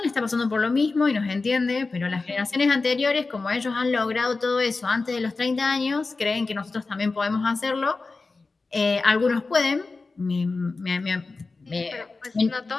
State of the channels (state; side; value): quieter; right; 3.8 dB